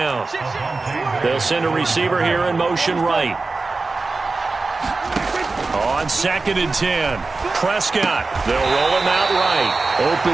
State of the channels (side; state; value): left; quieter; 3.7 dB